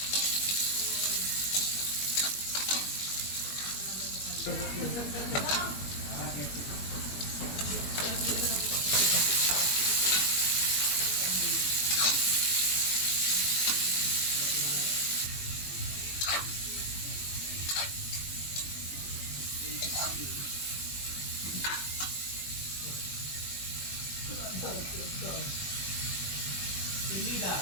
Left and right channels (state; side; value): late; right; 21 ms